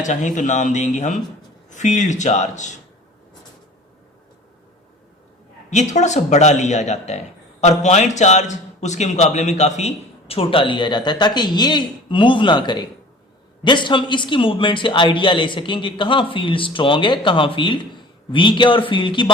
चाहें तो नाम देंगे हम फील्ड चार्ज। ये थोड़ा सा बड़ा लिया जाता है और पॉइंट चार्ज उसके मुकाबले में काफी छोटा लिया जाता है, ताकि ये मूव ना करे। जस्ट हम इसकी मूवमेंट से आइडिया ले सकें कि कहां फील्ड स्ट्रांग है, कहां फील्ड वीक है, और फील्ड की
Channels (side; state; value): both; normal; correlation 0.44